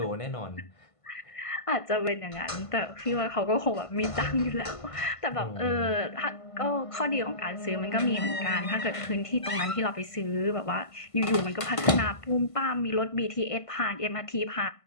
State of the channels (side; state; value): right; late; 1.5 ms